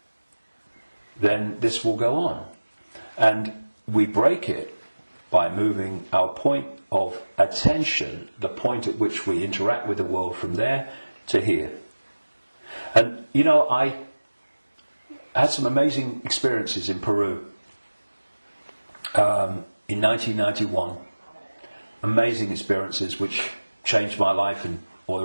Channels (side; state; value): both; inverted; correlation -1.00